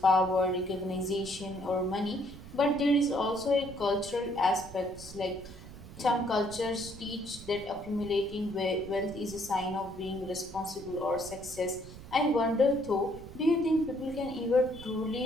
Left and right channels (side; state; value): right; noise; rumble, 15 dB below the sound